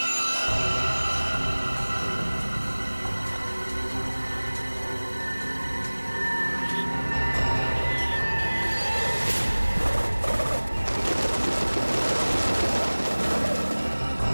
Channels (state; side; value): inverted; both; correlation -1.00